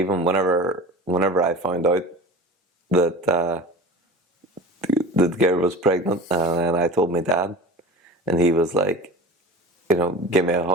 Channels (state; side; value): normal; both; correlation 0.36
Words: whenever I found out that. The girl was pregnant, and I told my dad, and he was like, give me a